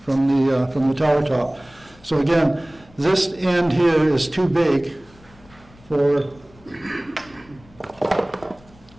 from the tower top. So again, this end here is too big for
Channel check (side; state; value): left; noise; rumble, 26 dB below the sound